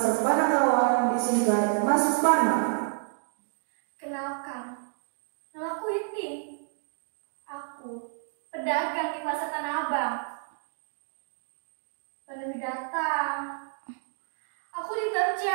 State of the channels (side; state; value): left; silent; 58 dB below the other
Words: Panakawan disingkat Mas Pana. Kenalkan, namaku Itin. Aku pedagang di pasar Tanah Abang. Pandemi datang, aku